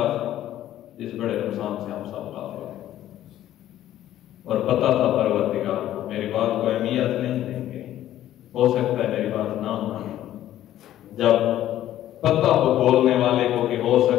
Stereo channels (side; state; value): right; quieter; 12.7 dB